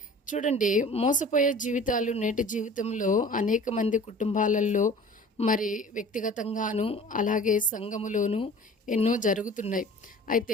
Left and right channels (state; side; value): normal; both; correlation 0.44